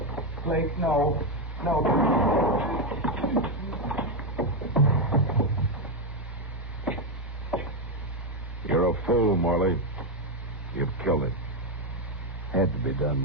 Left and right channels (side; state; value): both; normal; correlation 0.05